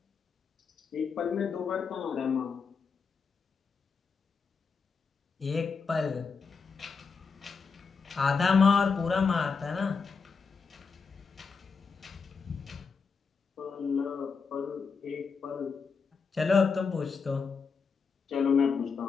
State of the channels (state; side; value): quieter; right; 5.3 dB